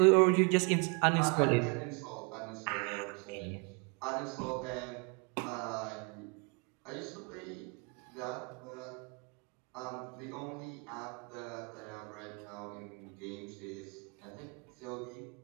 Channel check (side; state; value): left; quieter; 33.8 dB